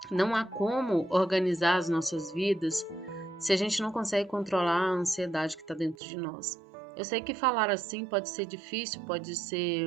Não há como organizar as nossas vidas se a gente não consegue controlar a ansiedade que está dentro de nós. Eu sei que falar assim pode ser difícil, pode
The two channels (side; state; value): left; drops out; at 6.0 s